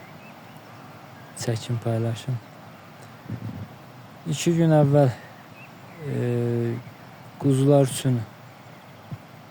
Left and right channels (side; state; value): both; identical; correlation 1.00